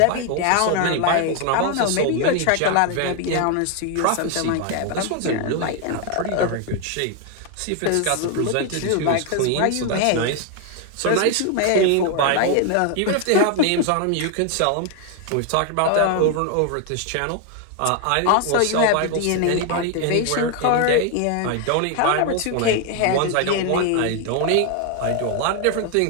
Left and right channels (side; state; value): both; different; correlation 0.01